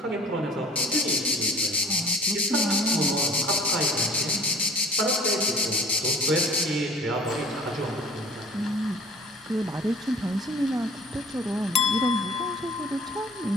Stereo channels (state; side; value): normal; both; correlation 0.48